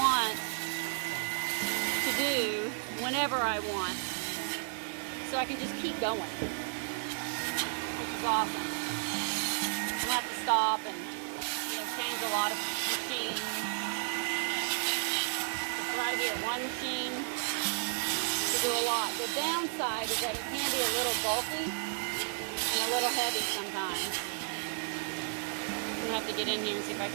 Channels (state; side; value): silent; left; digital silence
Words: to do whenever I want. So I can just keep going, which is awesome. I don't have to stop and change a lot of machines. It's right here, one machine to do a lot. The downside is that it can be a little bulky and a little heavy sometimes. I'm gonna have to get in here and see if I